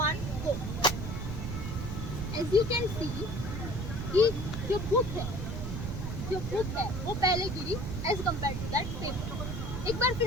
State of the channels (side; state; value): right; noise; rumble, 4 dB below the sound